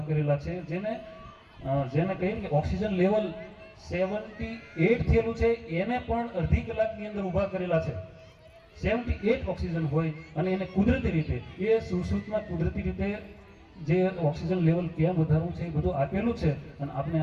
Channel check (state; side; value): identical; both; correlation 1.00